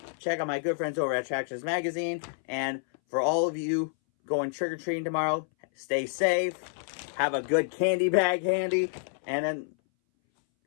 check out my good friends over at Attractions Magazine. And for all of you going trick-or-treating tomorrow, stay safe, have a good candy bag handy, and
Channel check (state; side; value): silent; right; 59 dB below the other